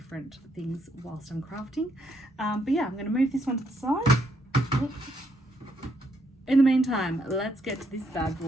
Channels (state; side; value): normal; both; correlation 0.75